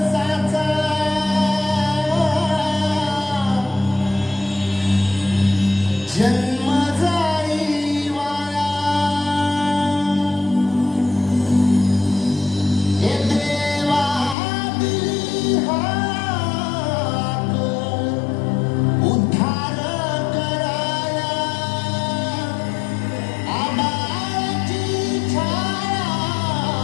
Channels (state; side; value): drops out; right; at 14.4 s